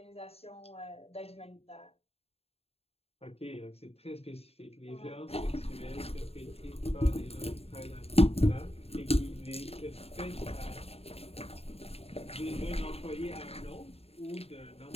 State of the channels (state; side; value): late; right; 0.29 ms